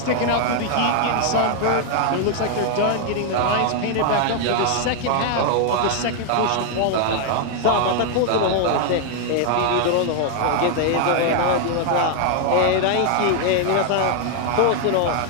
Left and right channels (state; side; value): different; both; correlation 0.00